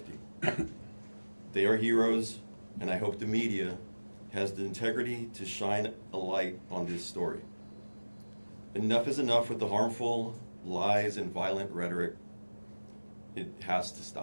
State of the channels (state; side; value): inverted; both; correlation -1.00